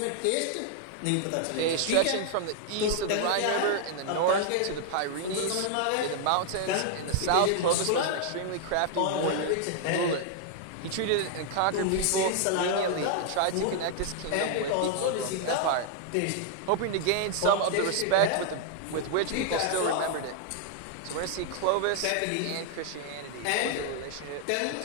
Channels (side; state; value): both; different; correlation 0.00